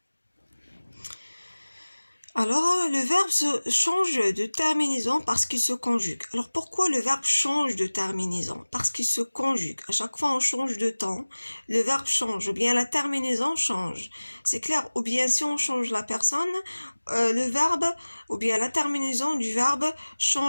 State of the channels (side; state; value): both; inverted; correlation -1.00